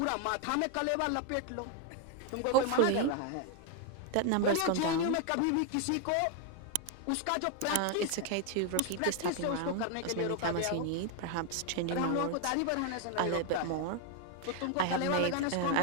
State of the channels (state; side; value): different; both; correlation 0.00